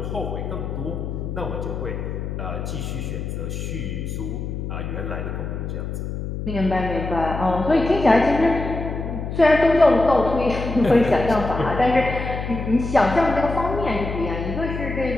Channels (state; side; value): noise; left; hum, 5 dB below the sound